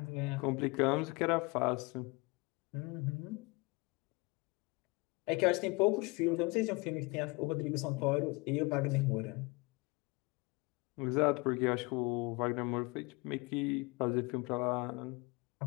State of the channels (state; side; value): quieter; right; 26.4 dB